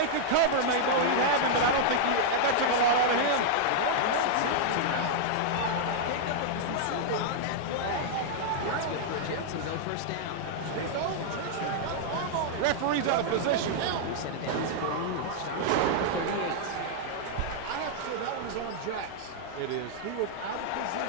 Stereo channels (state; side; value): different; both; correlation -0.01